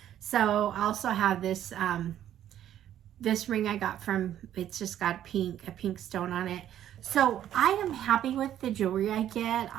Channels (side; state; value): left; quieter; 11.2 dB